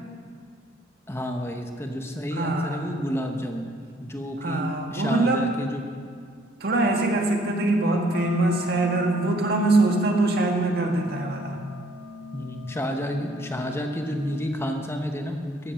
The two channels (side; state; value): both; normal; correlation 0.63